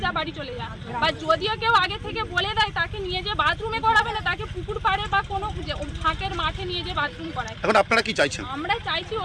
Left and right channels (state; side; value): identical; both; correlation 1.00